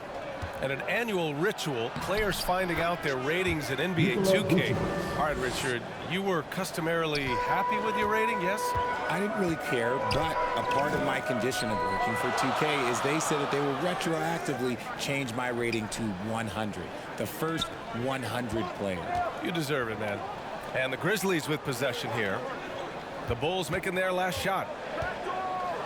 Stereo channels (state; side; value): identical; both; correlation 1.00